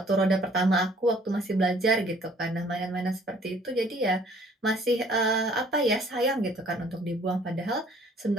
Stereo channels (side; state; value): both; normal; correlation 0.58